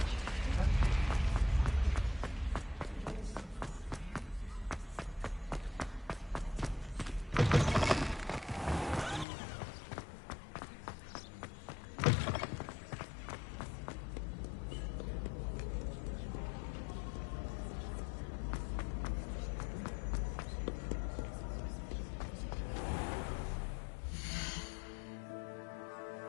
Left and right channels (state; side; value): drops out; right; at 9.2 s